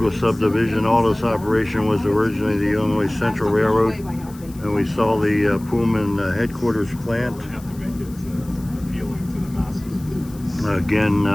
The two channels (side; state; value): left; noise; hiss, 23 dB below the sound